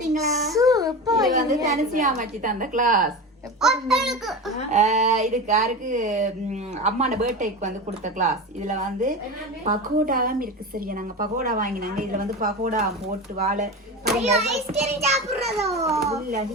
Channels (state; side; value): normal; both; correlation 0.25